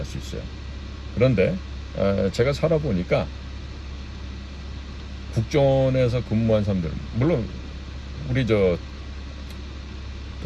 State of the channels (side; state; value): both; identical; correlation 1.00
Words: 수 있어요. 그런데 제가 살아보니까 국정원에서 근무한 사람들, 물론 우리 저